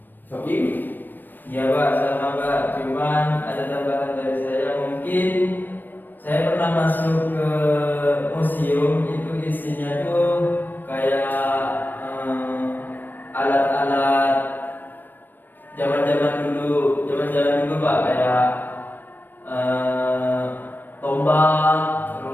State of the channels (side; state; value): right; late; 0.092 ms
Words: Sokim? Iya Pak, sama Pak. Cuman ada tambahan dari saya. Mungkin saya pernah masuk ke museum, itu isinya tuh kayak alat-alat zaman-zaman dulu Pak, kayak tombak,